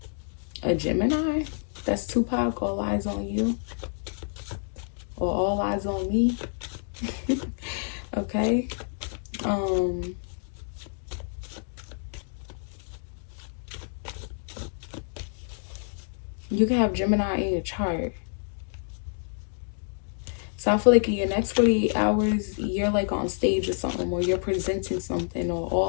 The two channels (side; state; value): right; silent; digital silence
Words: a Gemini. That's Tupac. All eyes on you, or all eyes on me. Okay. You can have Gemini in your chart. So I feel like in your next 48 hours, you're like on stage or something, or you're presenting something, or